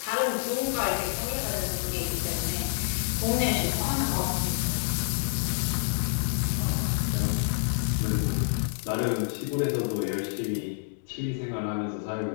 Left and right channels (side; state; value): right; silent; digital silence